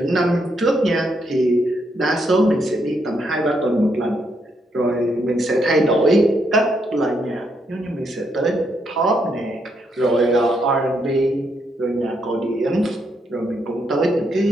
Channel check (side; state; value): both; normal; correlation 0.77